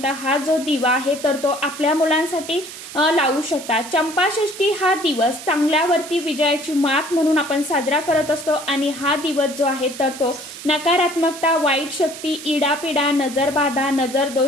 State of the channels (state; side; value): noise; right; hiss, 13 dB below the sound